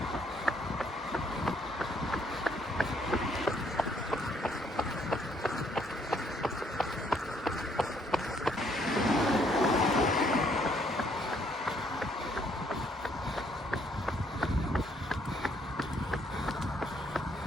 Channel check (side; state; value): both; normal; correlation 0.68